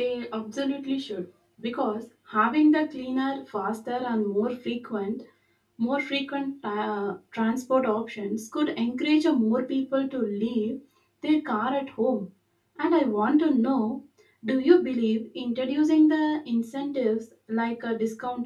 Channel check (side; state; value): both; identical; correlation 1.00